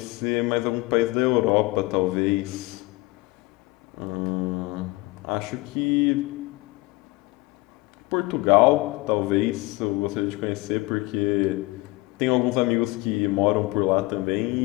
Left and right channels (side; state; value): right; quieter; 22.3 dB